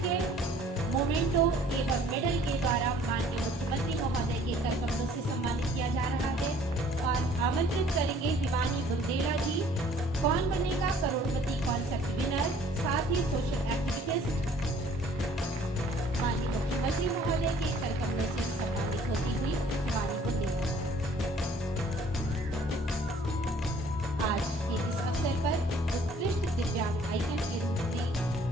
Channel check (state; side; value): normal; both; correlation 0.56